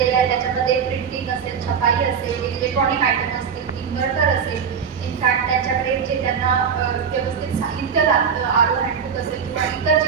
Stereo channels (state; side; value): quieter; left; 6.9 dB